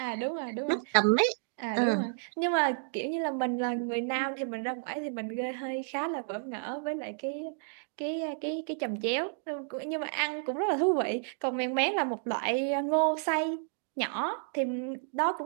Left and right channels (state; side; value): silent; left; digital silence